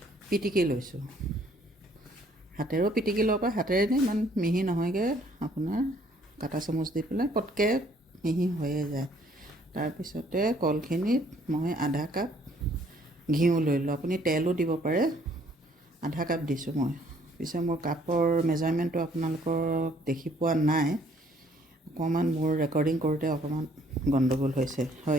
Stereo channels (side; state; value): both; normal; correlation 0.63